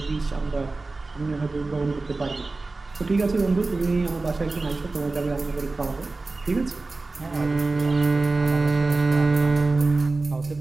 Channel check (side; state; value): left; quieter; 3.5 dB